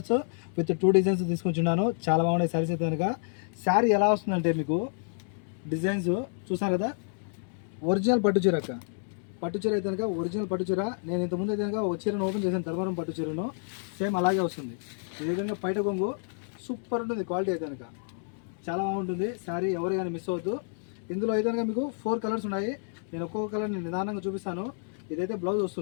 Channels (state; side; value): silent; right; digital silence